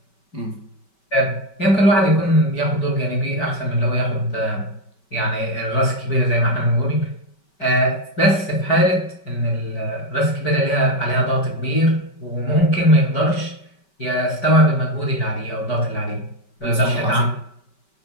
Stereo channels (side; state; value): right; late; 5.2 ms